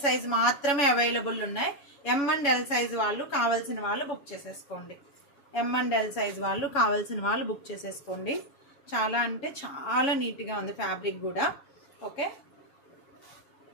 సైజ్ మాత్రమే అవైలబుల్ ఉన్నాయి. M and L సైజ్ వాళ్ళు కావాల్సిన వాళ్ళు బుక్ చేసేసుకోండి. చాలా అంటే చాలా నీట్గా ఉంది ఫ్యాబ్రిక్ కూడా. ఓకే,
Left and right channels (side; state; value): right; late; 7.1 ms